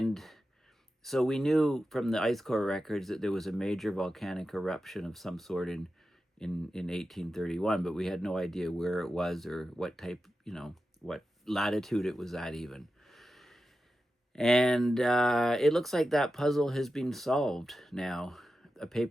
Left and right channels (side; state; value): both; normal; correlation 0.91